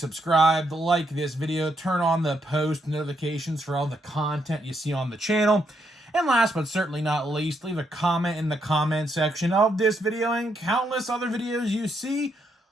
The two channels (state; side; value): normal; both; correlation 0.77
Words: like this video, turn on the post notifications for all the content you see on the channel. And last but certainly not least, leave a comment in the comment section of this video and countless other videos you see